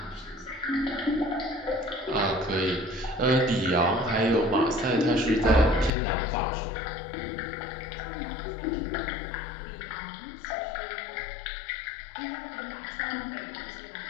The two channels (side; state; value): right; drops out; at 5.9 s